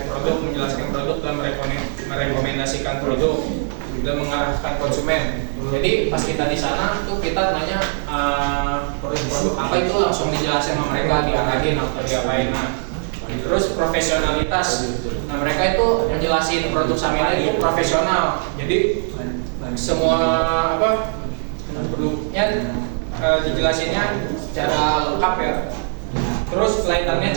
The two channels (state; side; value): silent; left; 65 dB below the other